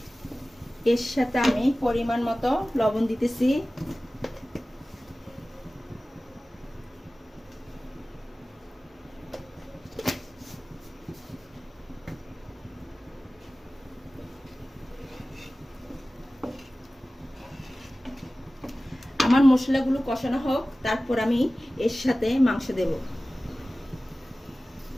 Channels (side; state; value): both; normal; correlation 0.97